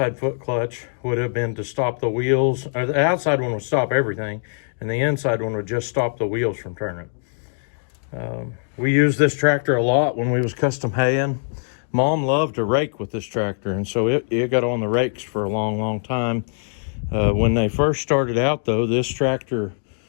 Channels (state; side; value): silent; right; digital silence